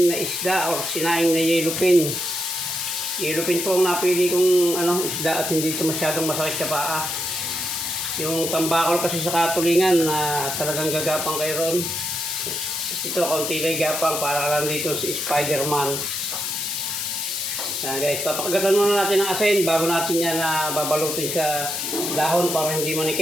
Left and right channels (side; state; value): left; noise; hiss, 2 dB below the sound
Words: na isda or sinaing na yellowfin. Yellowfin po ang napili kong isda at hindi ito masyadong masakit sa paa. Yung tambakol kasi sa katulingan na talagang gagapang kayo ron. Ito konti lang gapang para lang dito si Spider-Man. Guys, papakagatan muna natin ng asin bago natin yan babalutin sa dahon para hindi